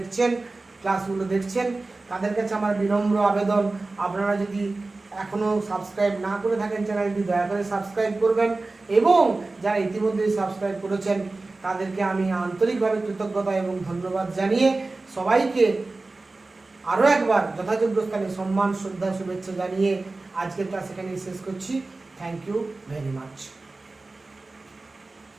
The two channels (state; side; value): quieter; left; 3.4 dB